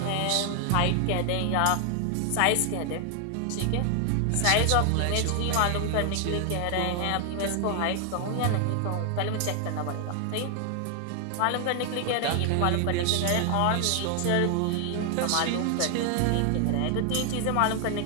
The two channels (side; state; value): both; different; correlation 0.00